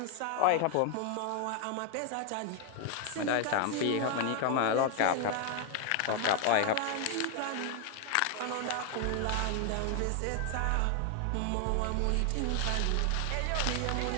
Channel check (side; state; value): both; different; correlation 0.00